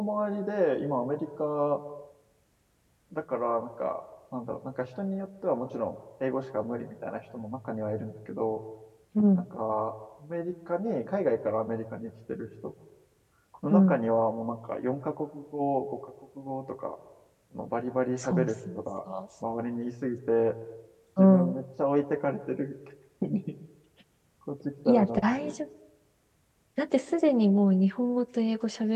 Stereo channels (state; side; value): identical; both; correlation 1.00